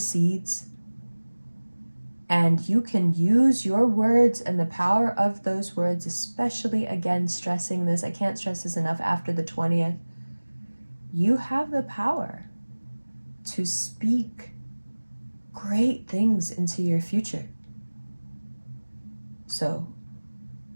And you can use your words and the power of those words, especially, again, stressing this. I can't stress this enough after the 20th. You have the power to speak great things into your future. So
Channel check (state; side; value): inverted; both; correlation -1.00